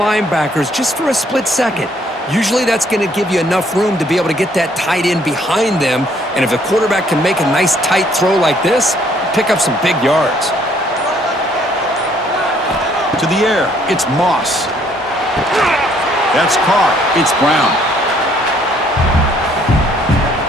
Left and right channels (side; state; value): both; normal; correlation 0.64